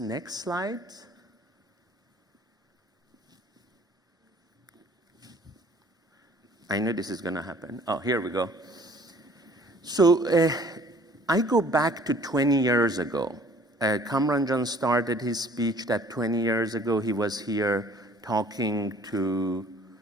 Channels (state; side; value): normal; both; correlation 0.54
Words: slide. I know this is going to happen. Oh, here we go. So I go back to 20 years ago. Kamran Jan started his speech that 20 years ago he was here talking to